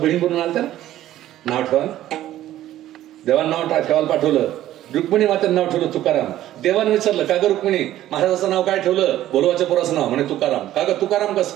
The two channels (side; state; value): left; quieter; 13.4 dB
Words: म्हणून आलत्या ना, नाव ठेवा. देवानं नाव ठेवायला पाठवलं, रुक्मिणी मातेनं नाव ठेवलं तुकाराम. देवानं विचारलं का ग रुक्मिणी महाराजाचं नाव काय ठेवलं? बोलोबाच्या पोराचं नाव म्हणे तुकाराम. का ग तुकाराम कस